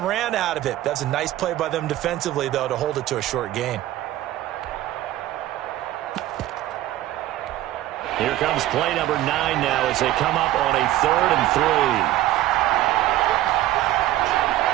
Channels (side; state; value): left; quieter; 14.6 dB